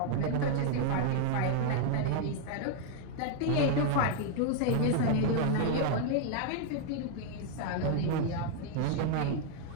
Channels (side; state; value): both; different; correlation 0.00